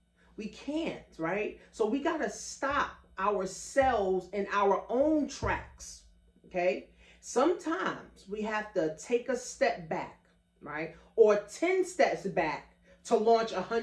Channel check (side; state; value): both; identical; correlation 1.00